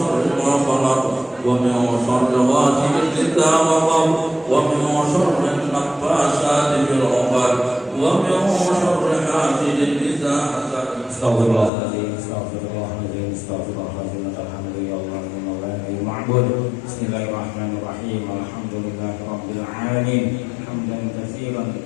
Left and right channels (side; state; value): right; drops out; at 11.7 s